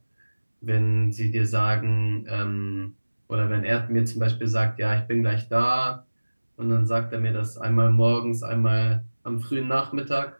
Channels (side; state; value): both; inverted; correlation -1.00